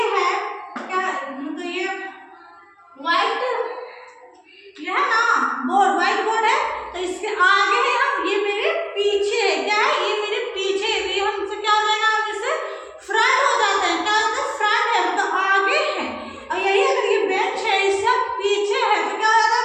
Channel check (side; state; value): both; identical; correlation 1.00